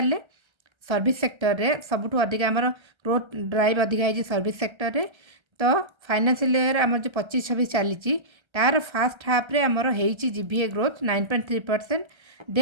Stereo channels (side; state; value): left; late; 1.3 ms